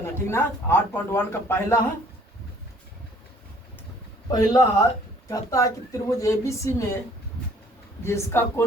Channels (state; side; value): normal; both; correlation 0.57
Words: है, ठीक ना। 8.1 का पहला है। कहता है कि त्रिभुज एबीसी में जिसका